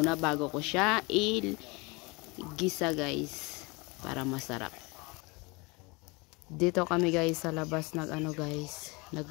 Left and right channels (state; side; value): quieter; right; 26.9 dB